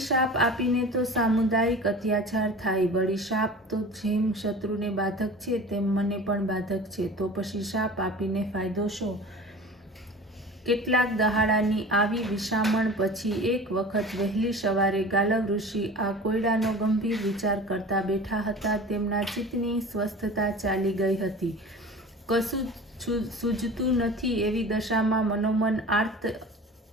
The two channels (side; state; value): both; normal; correlation 0.38